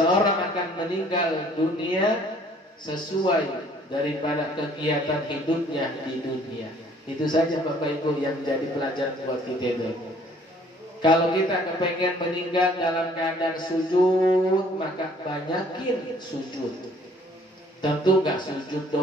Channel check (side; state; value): both; normal; correlation 0.58